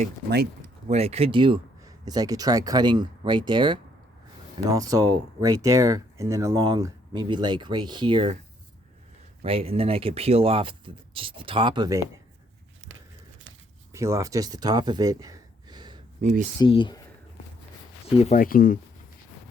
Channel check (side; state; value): both; normal; correlation 0.68